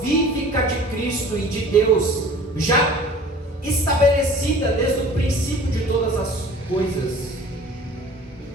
de Cristo e de Deus, já estabelecida desde o princípio de todas as coisas.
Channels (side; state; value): both; normal; correlation 0.45